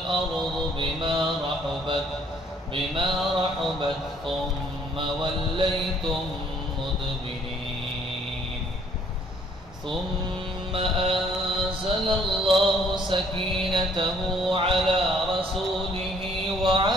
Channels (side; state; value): both; normal; correlation 0.62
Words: بما رحبت ثم وليتم مدبرين ثم أنزل الله سكينته على رسوله